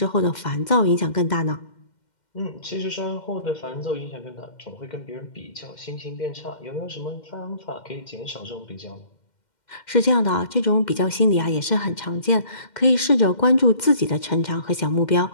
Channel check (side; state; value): right; late; 2.1 ms